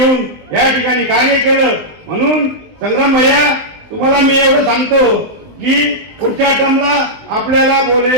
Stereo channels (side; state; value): left; late; 20 ms